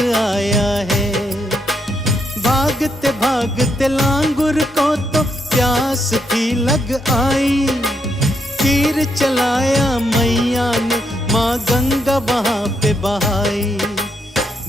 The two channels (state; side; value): normal; both; correlation 0.78